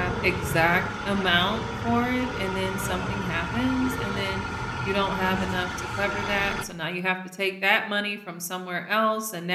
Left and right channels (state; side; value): identical; both; correlation 1.00